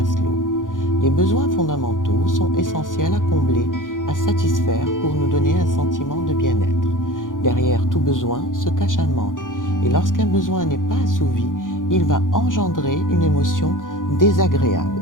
Les besoins fondamentaux sont essentiels à combler, à satisfaire pour nous donner un sentiment de bien-être. Derrière tout besoin se cache un manque et lorsqu'un besoin n'est pas assouvi, il va engendrer une émotion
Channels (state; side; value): late; right; 0.89 ms